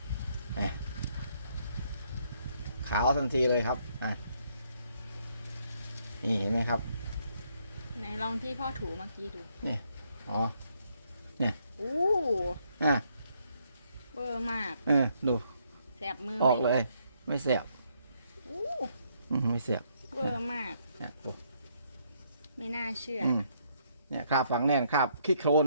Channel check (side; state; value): both; inverted; correlation -0.72